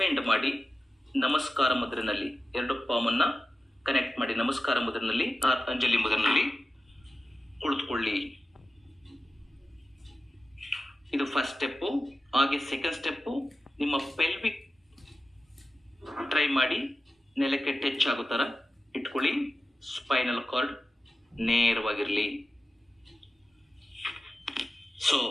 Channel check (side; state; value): both; normal; correlation 0.94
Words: ಮಾಡಿ ನಮಸ್ಕಾರ ಮುದ್ರೆನಲ್ಲಿ 2 ಪಾಮನ್ನು ಕನೆಕ್ಟ್ ಮಾಡಿ ನಮಸ್ಕಾರ ಮುದ್ರೆನಲ್ಲಿ ಅಂಜಲಿ ಮುದ್ರೆನಲ್ಲಿ ಕುಳಿತುಕೊಳ್ಳಿ. ಇದು ಫಸ್ಟ್ ಸ್ಟೆಪ್ಪು. ಹಾಗೆ ಸೆಕೆಂಡ್ ಸ್ಟೆಪ್ಪು, ನಿಮ್ಮ ಪೆಲ್ವಿಕ್ ಟ್ರೈ ಮಾಡಿ ನೆಲಕ್ಕೆ ಟಚ್ ಆಗೋ ಥರ ಇಟ್ಕೊಳ್ಳಿ. Spinal cord ನೇರವಾಗಿರಲಿ. ಸೊ